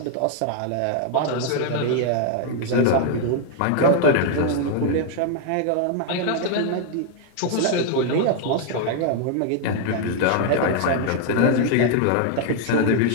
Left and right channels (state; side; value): different; both; correlation 0.00